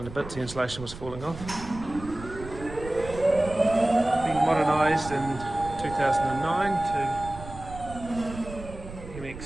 to bits, the insulation was falling off. Being modernised in 2009 to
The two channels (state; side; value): noise; right; rumble, 13 dB below the sound